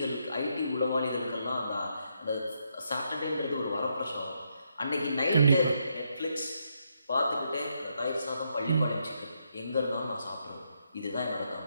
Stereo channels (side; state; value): both; inverted; correlation -0.78